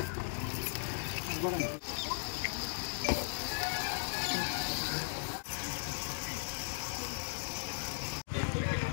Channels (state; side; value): silent; right; digital silence